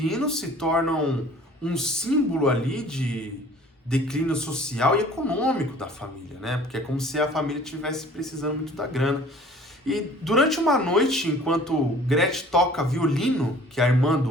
se tornam um símbolo ali de declínio social e econômico da família, né? Porque é como se a família estivesse precisando muito da grana. E durante uma noite, enquanto Gretchen toca violino, que é a irmã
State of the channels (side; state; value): both; normal; correlation 0.50